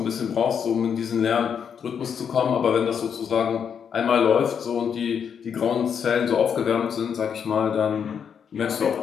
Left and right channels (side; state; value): right; quieter; 7.4 dB